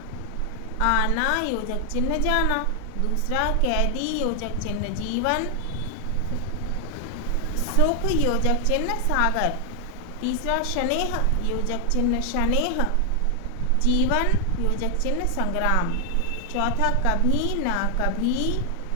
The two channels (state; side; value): different; both; correlation 0.00